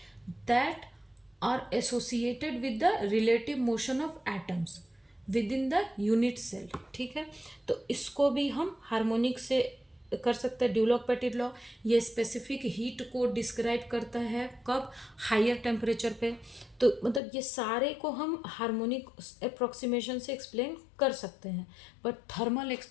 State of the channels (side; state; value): right; drops out; at 17.2 s